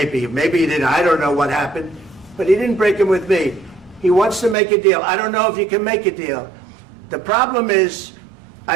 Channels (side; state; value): left; drops out; at 4.5 s